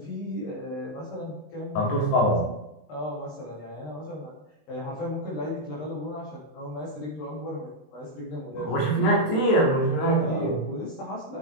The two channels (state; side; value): late; right; 20 ms